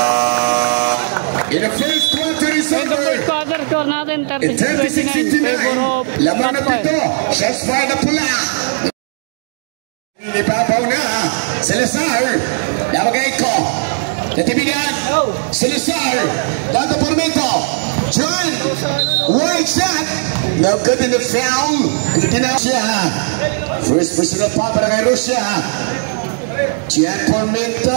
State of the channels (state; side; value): silent; left; digital silence